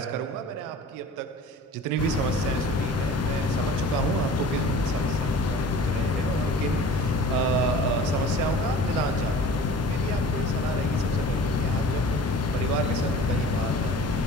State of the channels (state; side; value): normal; both; correlation 0.43